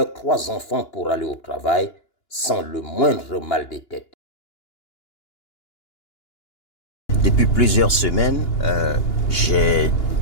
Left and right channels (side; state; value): right; late; 2.9 ms